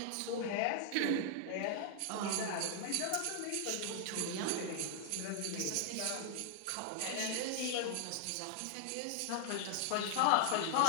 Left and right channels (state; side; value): different; both; correlation -0.01